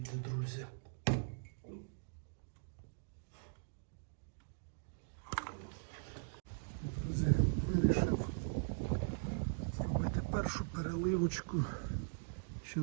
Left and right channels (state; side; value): silent; left; digital silence